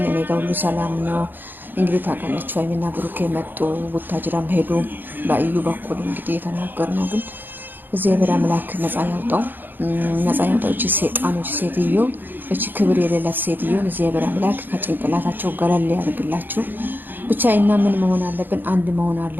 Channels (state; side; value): late; left; 0.091 ms